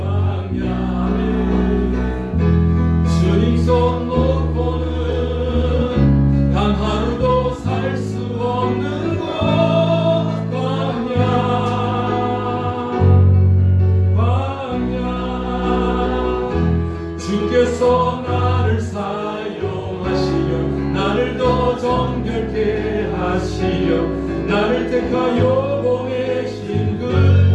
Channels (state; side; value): identical; both; correlation 1.00